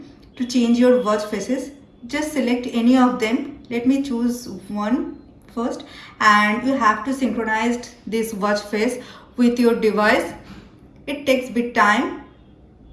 to change your watch faces. Just select any of them. Let me choose one first, and you have to synchronize this watch face with your device. It takes bit time.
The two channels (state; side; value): identical; both; correlation 1.00